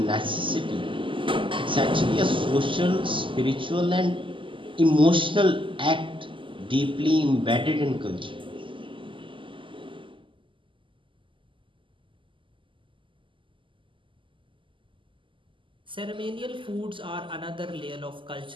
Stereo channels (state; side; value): late; left; 0.25 ms